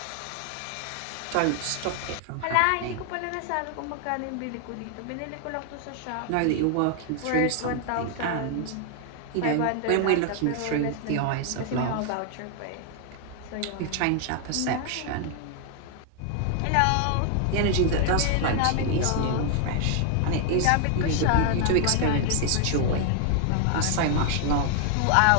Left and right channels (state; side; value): different; both; correlation 0.00